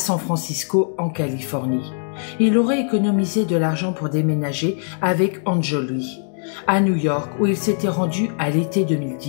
Francisco, en Californie. Il aurait économisé de l'argent pour déménager avec Angelou à New York, où il s'était rendu à l'été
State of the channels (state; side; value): silent; right; 65 dB below the other